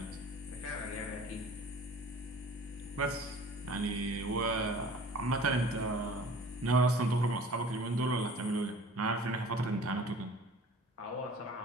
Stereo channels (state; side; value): normal; both; correlation 0.46